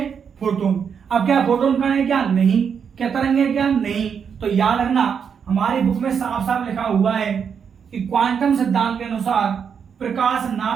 फोटोन। अब क्या फोटोन कण है, क्या नहीं, क्या तरंग है, क्या नहीं। तो याद रखना हमारी बुक में साफ साफ लिखा हुआ है कि क्वांटम सिद्धांत के अनुसार प्रकाश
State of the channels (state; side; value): quieter; left; 7.0 dB